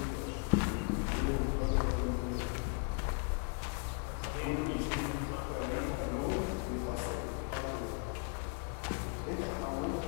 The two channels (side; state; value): right; quieter; 36.0 dB